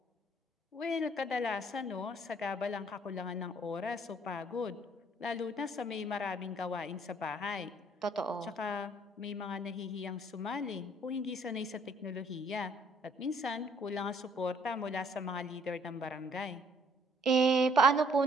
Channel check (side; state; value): both; normal; correlation 0.62